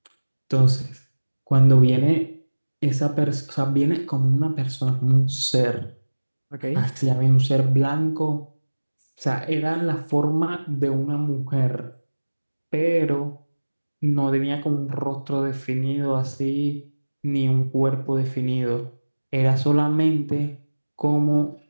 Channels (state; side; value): inverted; both; correlation -1.00